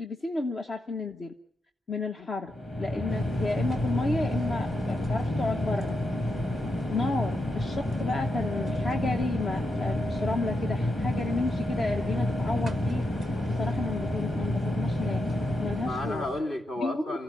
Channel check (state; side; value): normal; both; correlation 0.85